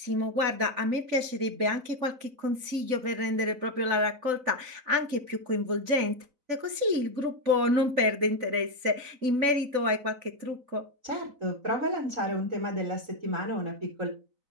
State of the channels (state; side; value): late; left; 4.0 ms